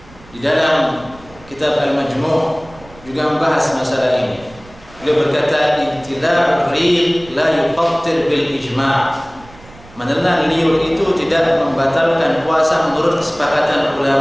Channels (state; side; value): noise; right; rumble, 23 dB below the sound